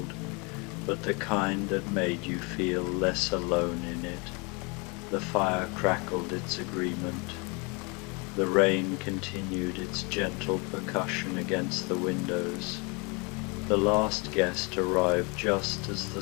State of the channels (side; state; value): right; quieter; 30.3 dB